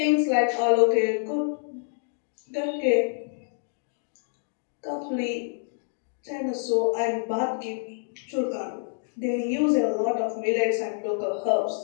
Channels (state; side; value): silent; right; digital silence